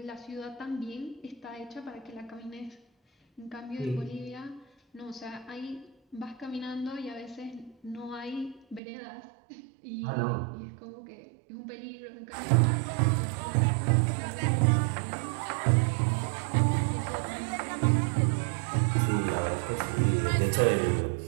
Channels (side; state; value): left; drops out; at 8.8 s